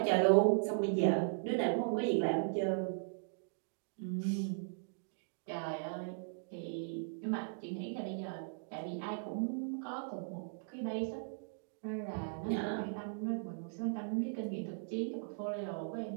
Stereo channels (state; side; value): silent; left; digital silence